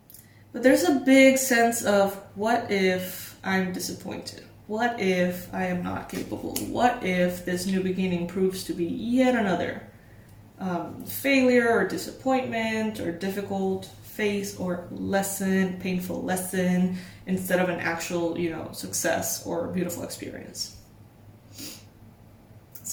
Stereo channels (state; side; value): identical; both; correlation 1.00